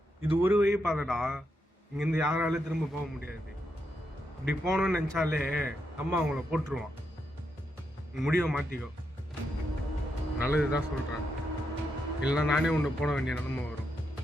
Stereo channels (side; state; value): both; normal; correlation 0.83